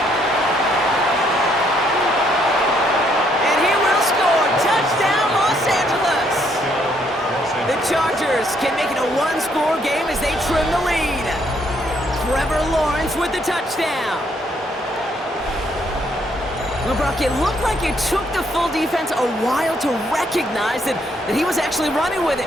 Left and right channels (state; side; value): normal; both; correlation 0.70